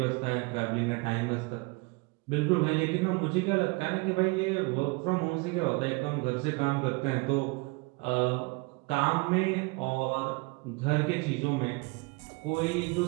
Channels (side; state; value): left; quieter; 27.5 dB